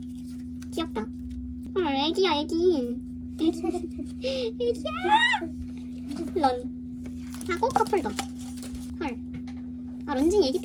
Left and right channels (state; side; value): identical; both; correlation 1.00